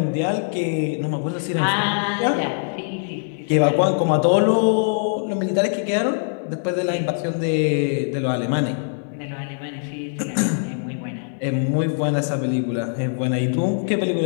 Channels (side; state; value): right; silent; 59 dB below the other